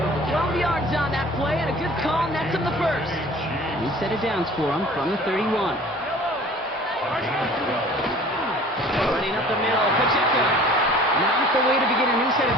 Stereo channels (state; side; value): normal; both; correlation 0.47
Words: 12 yards on that play and a good call nets him the first. New set of downs for him from the 31. Running up the middle, Pacheco. Not the way to begin a new set